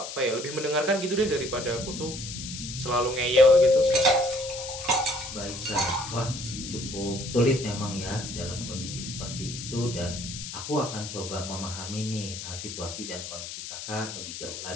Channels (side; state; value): left; noise; hiss, 8 dB below the sound